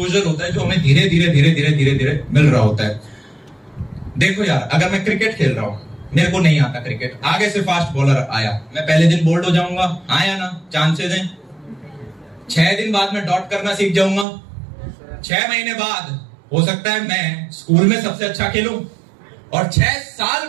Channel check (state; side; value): drops out; left; at 14.2 s